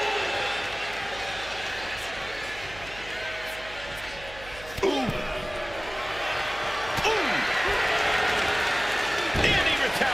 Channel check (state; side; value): noise; right; hum, 17 dB below the sound